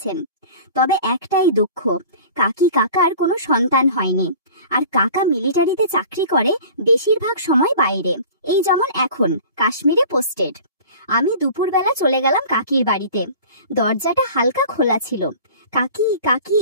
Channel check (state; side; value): inverted; both; correlation -0.42